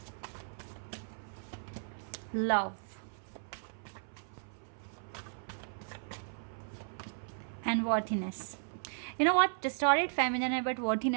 love, and worthiness. You know what, distorted feminine है but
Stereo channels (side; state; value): left; silent; 54 dB below the other